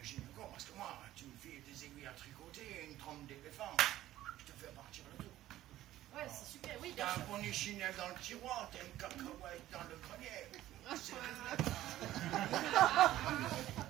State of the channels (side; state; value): left; quieter; 14.3 dB